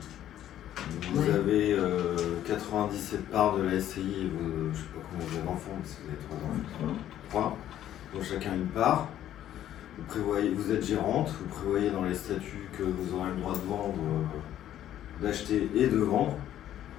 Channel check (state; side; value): quieter; right; 11.8 dB